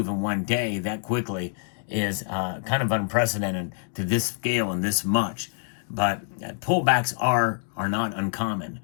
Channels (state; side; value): silent; right; 61 dB below the other